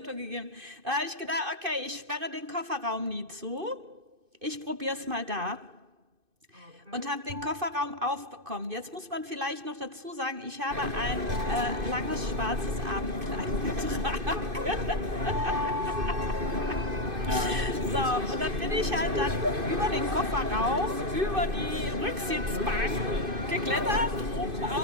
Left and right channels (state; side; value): late; left; 2.5 ms